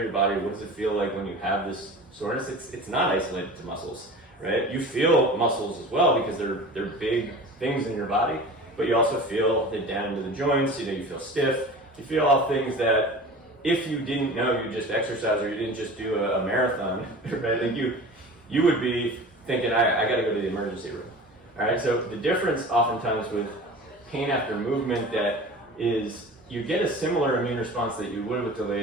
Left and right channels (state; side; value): normal; both; correlation 0.37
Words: your body, what does it feel like when you have this soreness? It's not isolated to muscles, right? You feel muscles as well because they're big things in your body, but you also feel it down into the joints. You know, you feel stiff. You feel all things that if you didn't know you just exercised or you didn't just do a marathon, right? Like you would be thinking, I got to go to the emergency room. All right, so the difference oftentimes with pain after movement that is you get a similar immune response that you would with